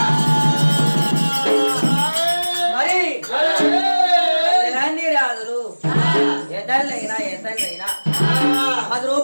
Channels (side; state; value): both; inverted; correlation -1.00